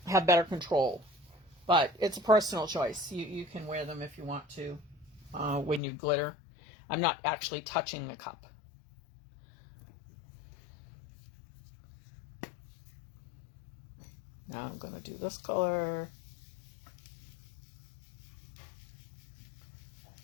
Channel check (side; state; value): right; drops out; at 5.8 s